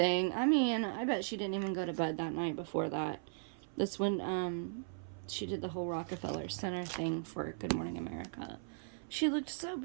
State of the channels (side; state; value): left; silent; 53 dB below the other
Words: I mean, I bet she didn't even go to bed that night before that. That's when, she did the whole Rockefeller Center thing for Good Morning America. She looked so